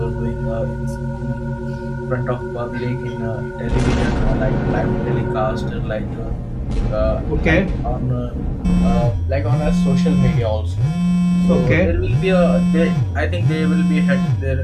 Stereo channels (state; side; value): identical; both; correlation 1.00